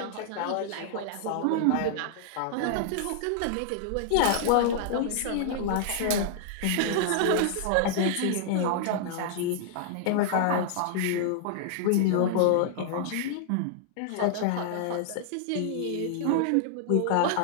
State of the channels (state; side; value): different; both; correlation -0.01